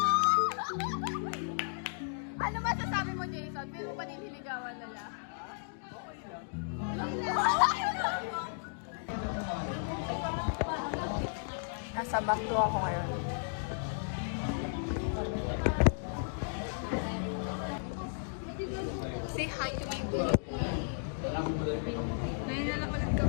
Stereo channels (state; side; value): silent; right; digital silence